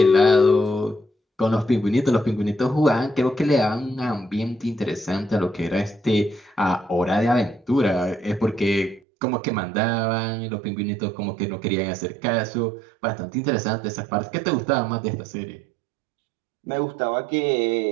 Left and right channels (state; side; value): drops out; left; at 9.0 s